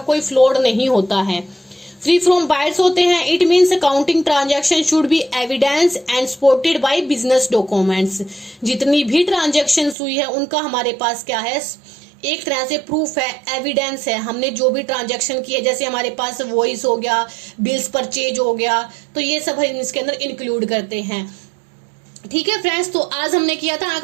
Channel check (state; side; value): drops out; left; at 10.0 s